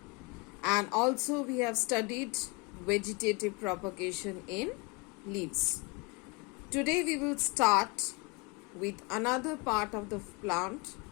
and also we have studied vegetative propagation in leaves. Today we will start with another part of the plant,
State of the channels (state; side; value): quieter; right; 29.0 dB